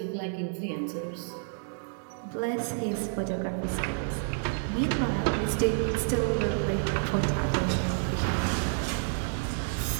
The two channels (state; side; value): silent; left; digital silence